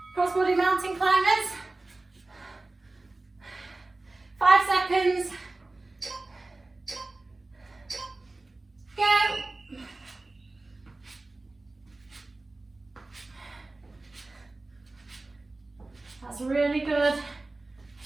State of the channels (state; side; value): quieter; left; 3.1 dB